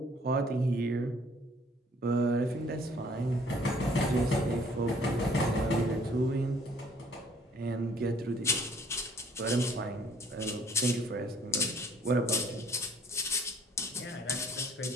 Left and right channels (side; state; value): both; normal; correlation 0.59